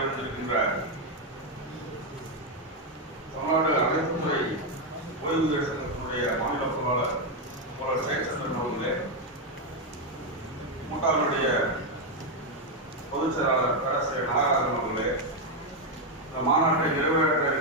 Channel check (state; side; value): normal; both; correlation 0.04